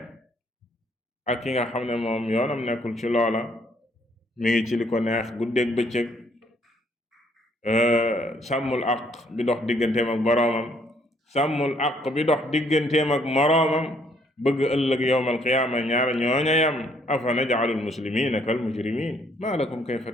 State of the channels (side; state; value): both; normal; correlation 0.66